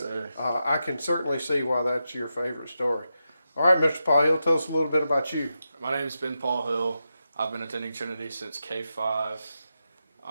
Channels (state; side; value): inverted; both; correlation -0.88